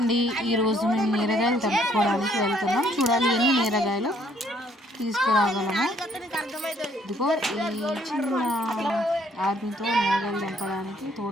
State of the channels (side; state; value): both; normal; correlation 0.65